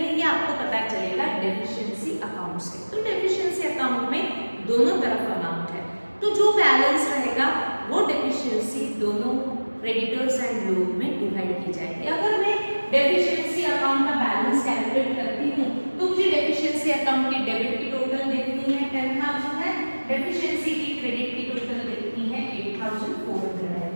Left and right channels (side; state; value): both; inverted; correlation -1.00